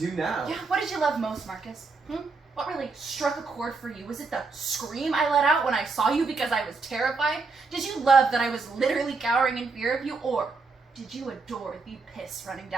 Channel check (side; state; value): left; quieter; 4.2 dB